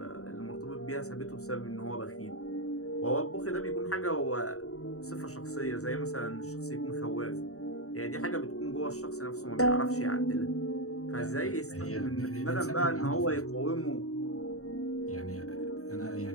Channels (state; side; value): late; right; 0.65 ms